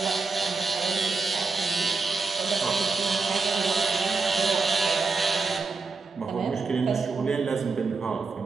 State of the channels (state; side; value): quieter; left; 4.3 dB